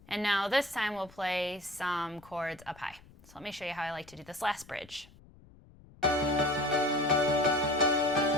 And now this time we'll play some chords up high. So let me show you how I like to do this last bridge.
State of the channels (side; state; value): left; noise; rumble, 24 dB below the sound